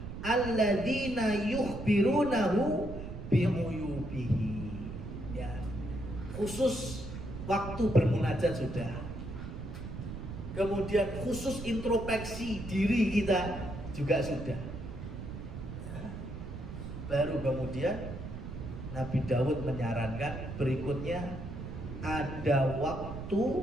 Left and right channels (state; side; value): noise; right; rumble, 8 dB below the sound